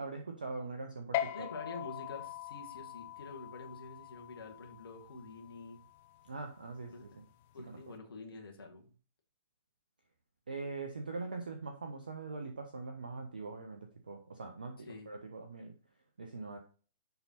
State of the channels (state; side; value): inverted; both; correlation -0.54